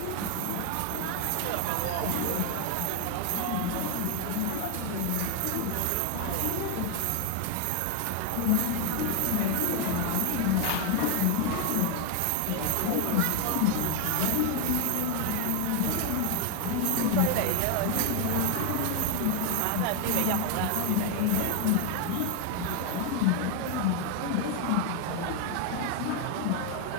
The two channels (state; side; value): different; both; correlation 0.01